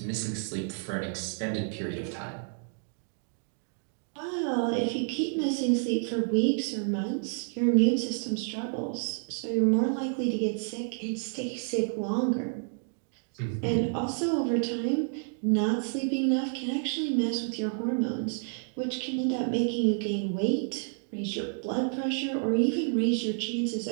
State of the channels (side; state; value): left; silent; 58 dB below the other